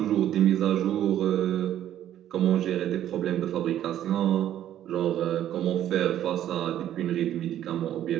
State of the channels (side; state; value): left; quieter; 11.5 dB